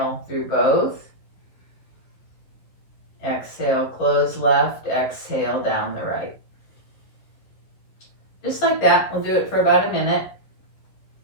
through both. Exhale, close left. Exhale down the right. Just like that. We'll do it for about a minute.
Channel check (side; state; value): right; late; 11 ms